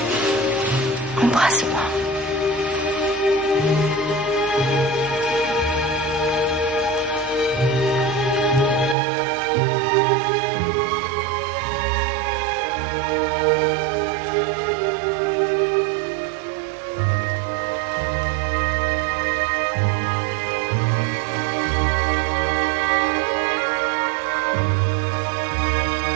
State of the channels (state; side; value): drops out; left; at 9.0 s